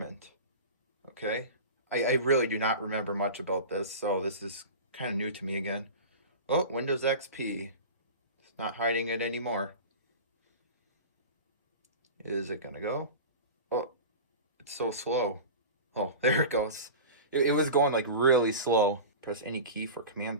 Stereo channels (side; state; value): both; inverted; correlation -0.31